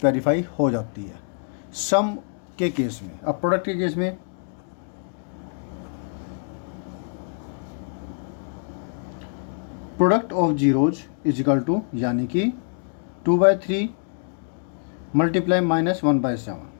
वेरीफाई हो जाती है सम के केस में। अब प्रोडक्ट के केस में प्रोडक्ट ऑफ जीरोज = यानी कि 2/3 मल्टीप्लाई -1/7,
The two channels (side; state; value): right; silent; digital silence